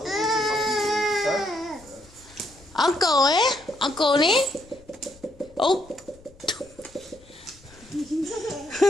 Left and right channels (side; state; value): left; noise; rumble, 25 dB below the sound